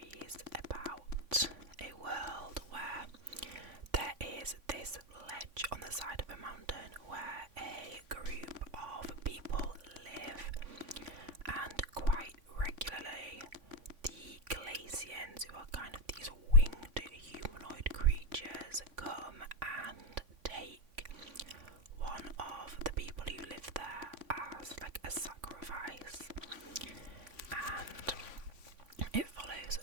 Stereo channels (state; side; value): late; left; 3.5 ms